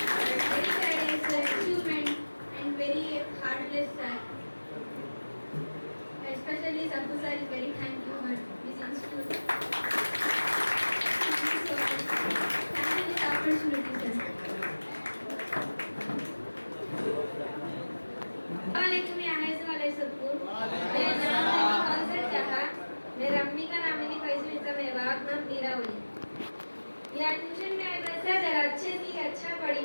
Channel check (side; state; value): both; inverted; correlation -1.00